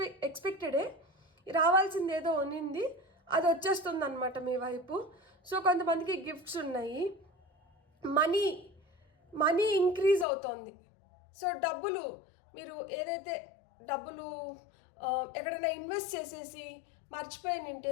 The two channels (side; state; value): right; drops out; at 10.2 s